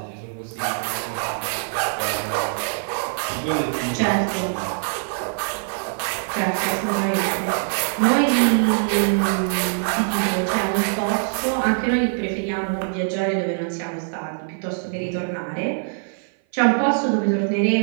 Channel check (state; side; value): silent; left; 55 dB below the other